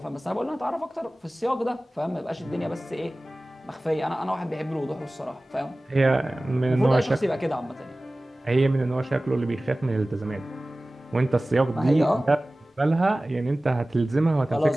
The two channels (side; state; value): both; normal; correlation 0.98